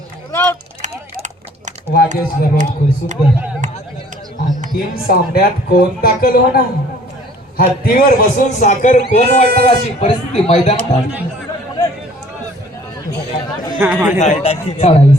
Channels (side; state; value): both; normal; correlation 0.54